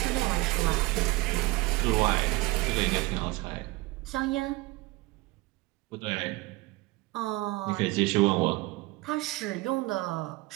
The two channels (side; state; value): left; quieter; 21.9 dB